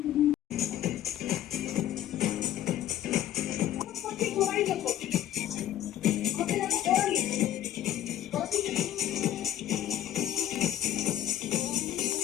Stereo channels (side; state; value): right; quieter; 12.2 dB